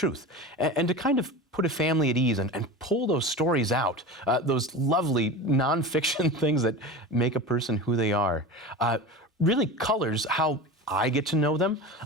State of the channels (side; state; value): both; normal; correlation 0.31